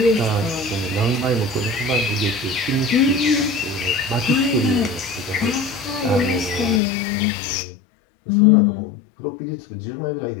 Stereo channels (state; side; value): drops out; right; at 6.8 s